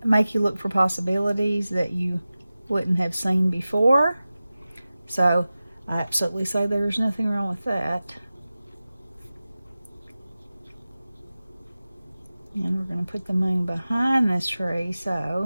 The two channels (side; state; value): both; inverted; correlation -0.95